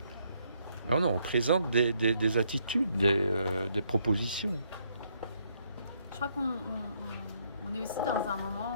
Non, on présente des attitudes, des propositions. Je crois qu'on est aussi dans un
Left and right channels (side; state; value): both; inverted; correlation -0.72